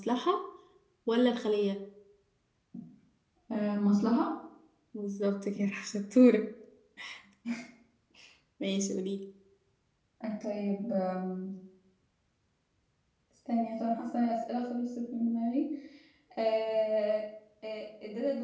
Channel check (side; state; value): both; identical; correlation 1.00